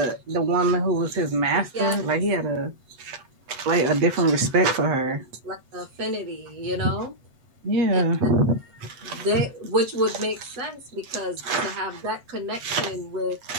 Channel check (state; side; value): late; left; 8.0 ms